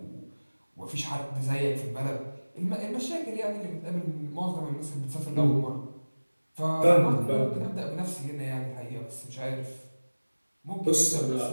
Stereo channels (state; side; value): inverted; both; correlation -1.00